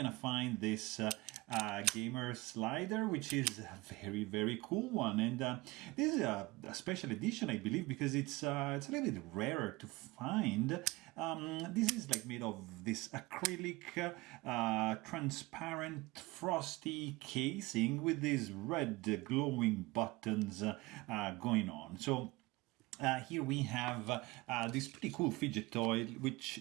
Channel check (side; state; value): left; quieter; 22.0 dB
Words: find this gamer slider, which is a very cool one. And this is a special edition, I believe, because it's a little bit rarer to find. This is like made of this acrylic transparent frosty casing with these red glowing buttons going on. So here we have this pretty cool fidget toy, which